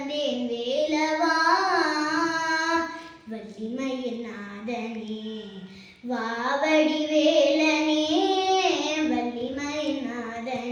வேலவா. வள்ளிமயில் நாதனே வாவடி வேலனே, வள்ளிமயில்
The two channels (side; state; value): both; identical; correlation 1.00